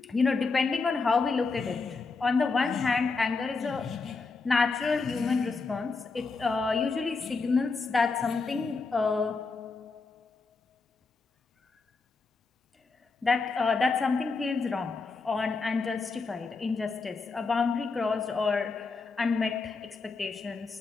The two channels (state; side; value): quieter; right; 4.3 dB